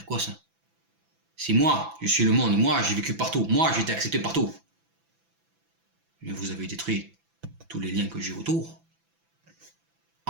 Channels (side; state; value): left; late; 6.0 ms